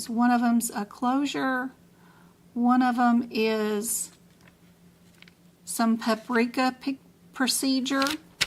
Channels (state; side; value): identical; both; correlation 1.00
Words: One of them's a closure, one of them is some paprika procedure,